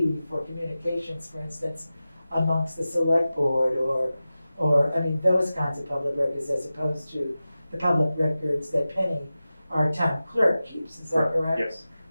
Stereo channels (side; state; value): both; inverted; correlation -0.95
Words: for communications, for instance, amongst the select board or, I mean, those kinds of public records, as opposed to the public records that Penny, our town clerk, keeps. Is that correct? Yes.